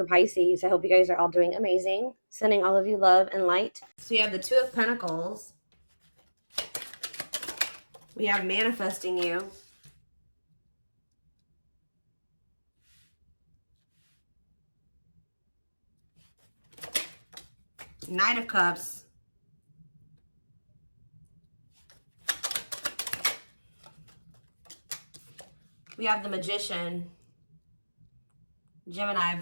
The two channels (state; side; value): inverted; both; correlation -1.00